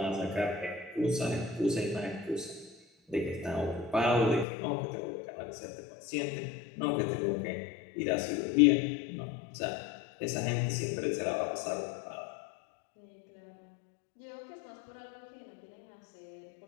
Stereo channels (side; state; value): right; drops out; at 4.5 s